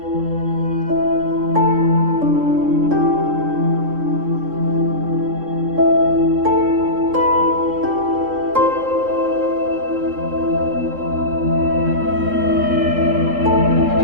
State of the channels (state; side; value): late; left; 3.7 ms